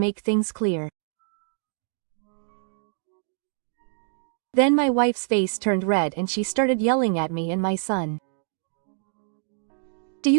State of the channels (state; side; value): silent; left; digital silence